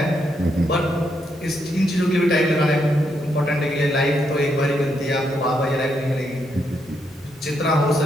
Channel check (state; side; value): normal; both; correlation 0.78